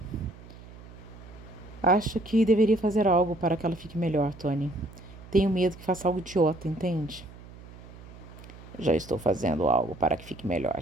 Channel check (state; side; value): noise; right; hum, 18 dB below the sound